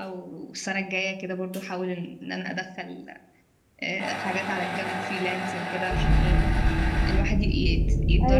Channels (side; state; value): both; identical; correlation 1.00